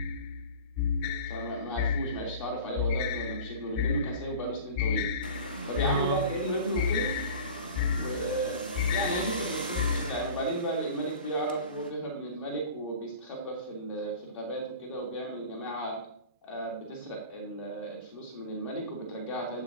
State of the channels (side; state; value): both; inverted; correlation -0.38